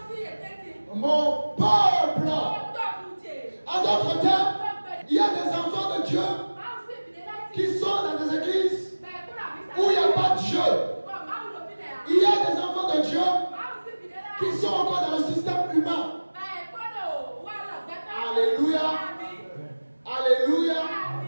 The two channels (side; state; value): both; inverted; correlation -1.00